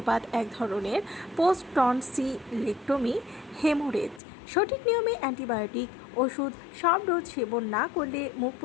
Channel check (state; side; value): drops out; right; at 4.2 s